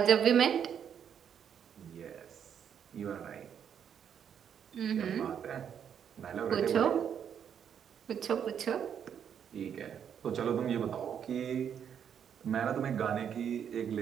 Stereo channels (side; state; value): left; quieter; 8.3 dB